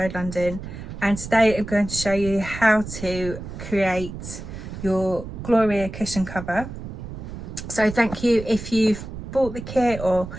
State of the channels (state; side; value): noise; right; rumble, 10 dB below the sound